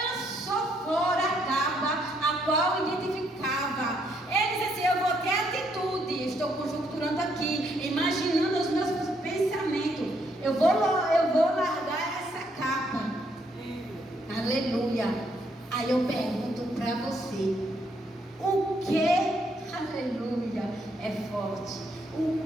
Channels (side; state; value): both; normal; correlation 0.73